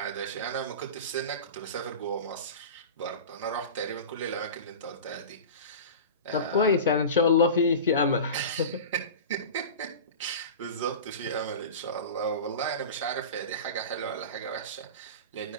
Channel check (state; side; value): inverted; both; correlation -0.30